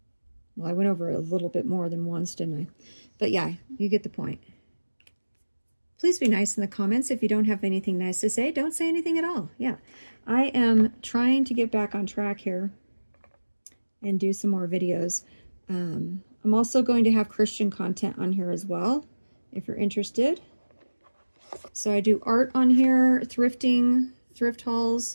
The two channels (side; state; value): both; inverted; correlation -1.00